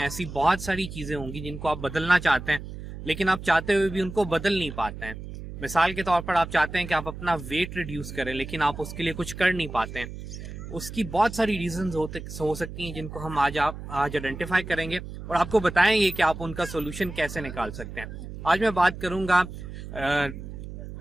बहुत सारी चीज़ें होंगी जिनको आप बदलना चाहते हैं, लेकिन आप चाहते हुए भी उनको बदल नहीं पाते हैं। मिसाल के तौर पर आप चाहते हैं कि आप अपना वेट रिड्यूस करें, लेकिन आप उसके लिए कुछ कर नहीं पाते हैं। उसकी बहुत सारी रीजंस हो सकती हैं जिनको हम आज आइडेंटिफाई करेंगे और आपको बताएंगे कि आप उनका सोल्यूशन कैसे निकाल सकते हैं। आज मैं बात करूंगा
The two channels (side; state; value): right; noise; hum, 10 dB below the sound